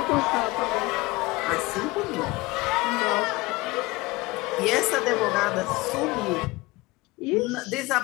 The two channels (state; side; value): quieter; right; 22.0 dB